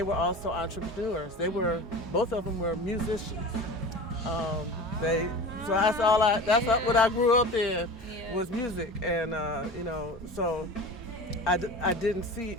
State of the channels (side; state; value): both; normal; correlation 0.34